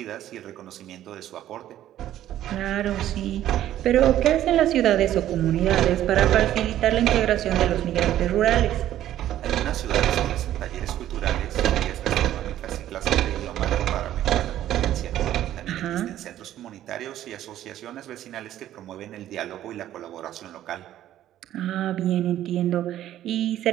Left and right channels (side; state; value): left; quieter; 12.5 dB